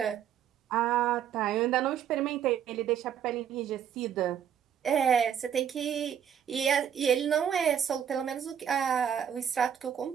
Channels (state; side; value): quieter; left; 8.8 dB